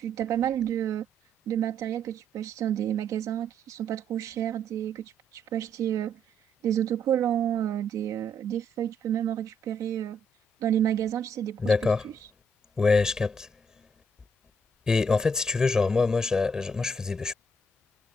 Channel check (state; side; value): normal; both; correlation 0.72